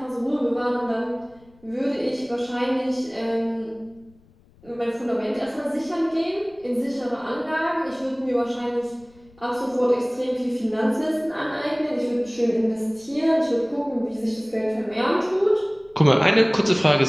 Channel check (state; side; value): noise; left; rumble, 29 dB below the sound